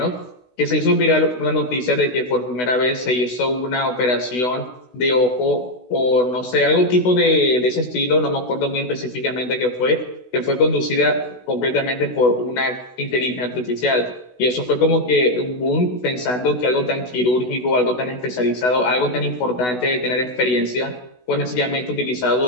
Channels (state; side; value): late; right; 16 ms